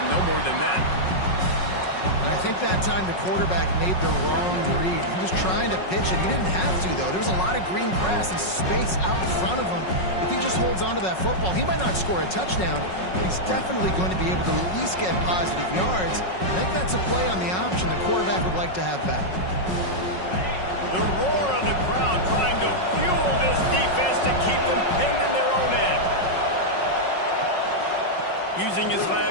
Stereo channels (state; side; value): late; right; 5.4 ms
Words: no more than that. And I think that time the quarterback made the wrong read. He was trying to pitch it. He didn't have to, though. There was a lot of green grass and space out in front of him. If he just holds on to that football, he might not score a touchdown, but he's definitely going to be able to at least get positive yards. I think that's a play on the option the quarterback would like to have back. The roar of the crowd trying to fuel this defense to keep them pinned in their own end. Using his